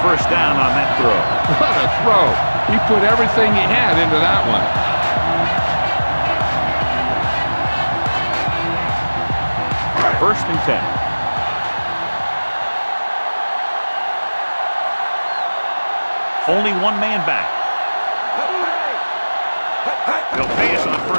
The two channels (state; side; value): inverted; both; correlation -1.00